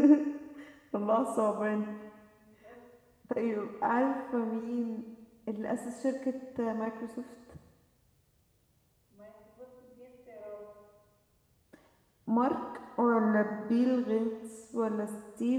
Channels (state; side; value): identical; both; correlation 1.00